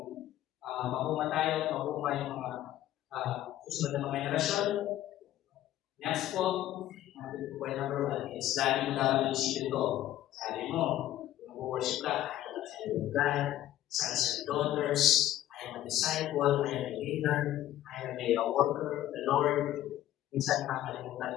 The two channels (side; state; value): right; quieter; 13.3 dB